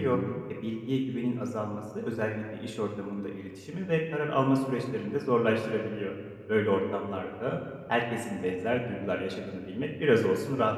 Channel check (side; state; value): both; identical; correlation 1.00